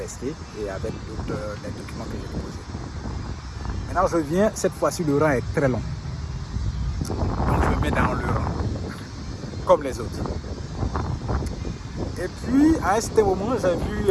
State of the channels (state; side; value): identical; both; correlation 1.00